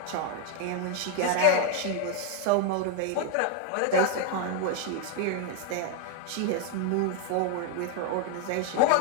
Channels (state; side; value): different; both; correlation 0.00